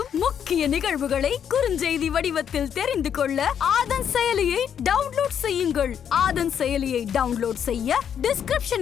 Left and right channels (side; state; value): right; quieter; 8.5 dB